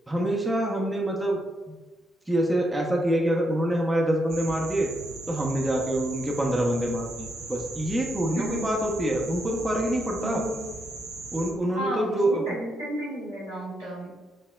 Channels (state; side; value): normal; both; correlation 0.80